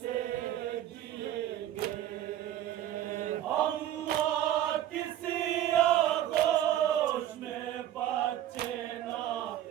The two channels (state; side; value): quieter; left; 12.2 dB